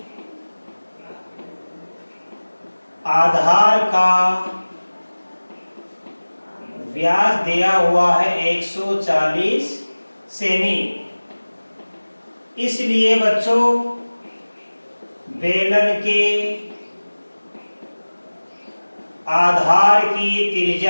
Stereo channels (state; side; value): inverted; both; correlation -1.00